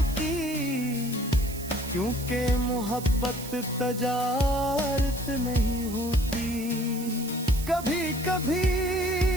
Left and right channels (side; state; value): right; noise; hiss, 13 dB below the sound